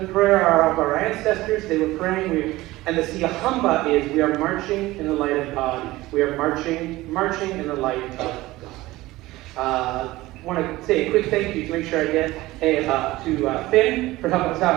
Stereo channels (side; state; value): left; quieter; 18.4 dB